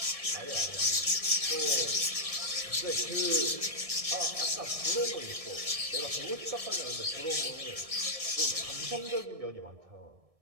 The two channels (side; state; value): left; late; 1.6 ms